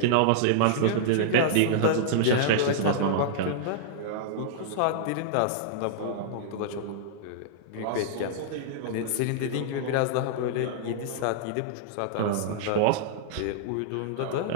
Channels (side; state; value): both; different; correlation -0.02